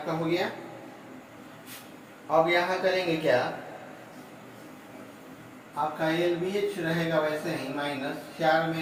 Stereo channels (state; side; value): identical; both; correlation 1.00